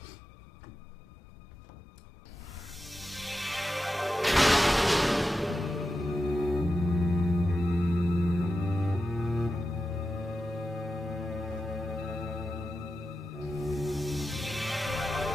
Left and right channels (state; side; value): normal; both; correlation 0.90